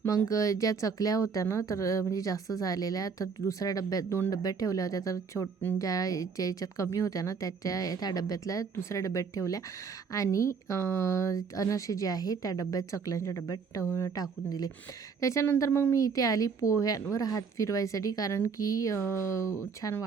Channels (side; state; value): left; quieter; 5.7 dB